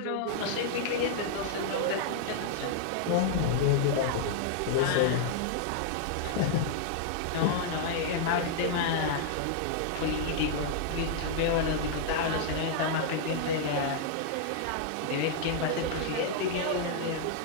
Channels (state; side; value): different; both; correlation -0.01